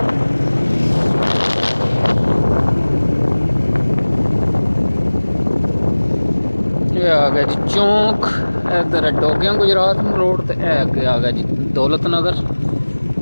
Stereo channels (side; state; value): both; inverted; correlation -1.00